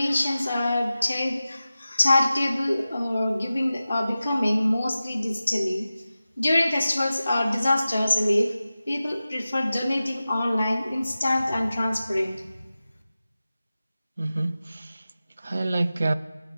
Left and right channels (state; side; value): inverted; both; correlation -0.95